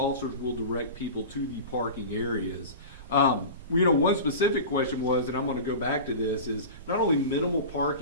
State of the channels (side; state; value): both; inverted; correlation -0.32